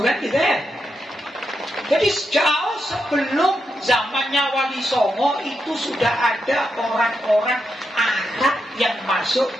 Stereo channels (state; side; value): normal; both; correlation 0.85